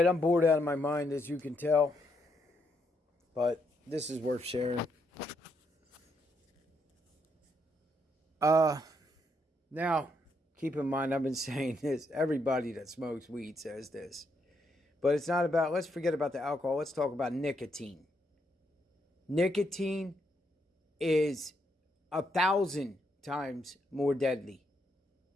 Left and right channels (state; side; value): normal; both; correlation 0.77